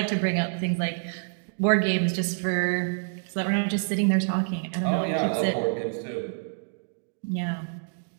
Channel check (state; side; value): silent; left; digital silence